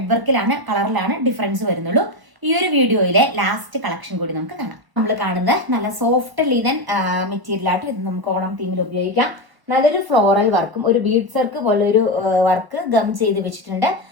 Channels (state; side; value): late; left; 1.0 ms